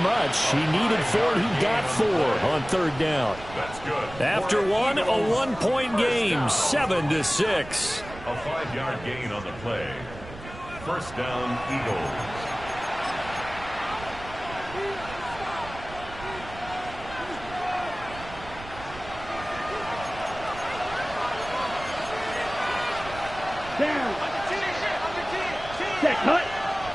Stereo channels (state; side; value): noise; right; rumble, 15 dB below the sound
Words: He needed 4, and he got 4 on 3rd down. That's good. After one, a 1-point game, 7-6. A 5-yard gain on the play. First down, Eagles. Down. Set, cut.